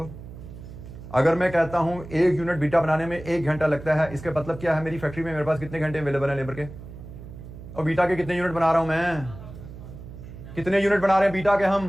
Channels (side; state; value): right; noise; hum, 14 dB below the sound